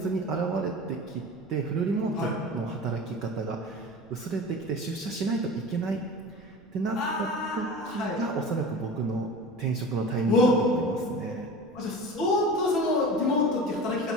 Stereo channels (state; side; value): noise; right; rumble, 26 dB below the sound